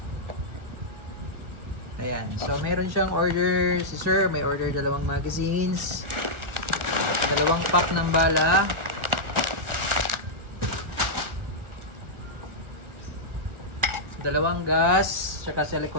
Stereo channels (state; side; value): late; left; 1.5 ms